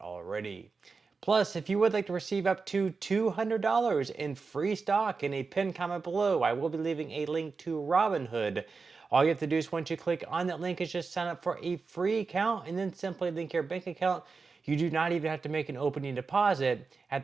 Plus, if you would like to receive up to $200 in free stock in a pinned comment below, I will be leaving a link to Robinhood. All you have to do is once you click on that link is just sign up for a free account and then simply link your bank account. You do not even have to make an opening deposit.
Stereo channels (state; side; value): quieter; left; 4.6 dB